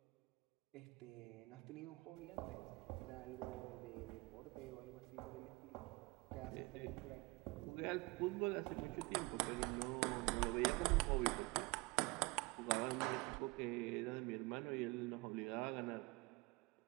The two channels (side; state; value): left; quieter; 24.9 dB